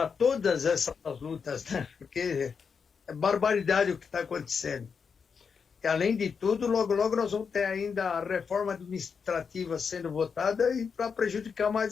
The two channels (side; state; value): right; quieter; 6.0 dB